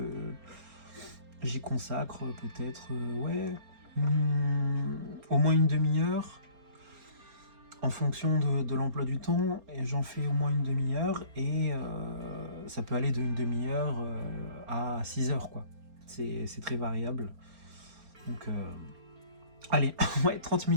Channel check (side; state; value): left; late; 4.3 ms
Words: j'y consacre peut-être, au moins une demi-heure, en fonction de l'emploi du temps, et j'en fais au moins une demi-heure, et ça peut aller d'une demi-heure à 6 heures, quoi. C'est très variable. Donc allez, ouais, 30